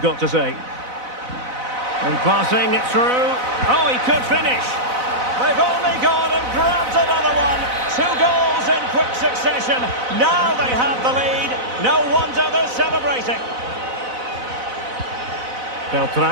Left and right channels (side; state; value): left; late; 4.0 ms